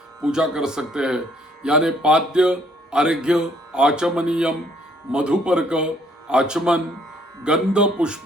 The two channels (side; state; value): both; normal; correlation 0.65